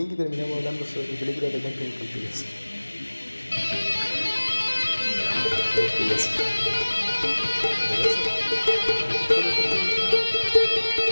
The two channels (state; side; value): inverted; both; correlation -1.00